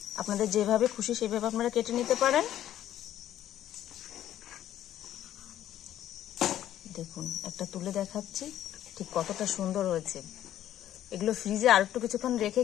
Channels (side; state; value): right; quieter; 12.0 dB